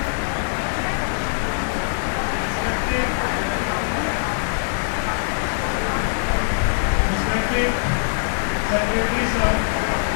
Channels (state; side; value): silent; right; 64 dB below the other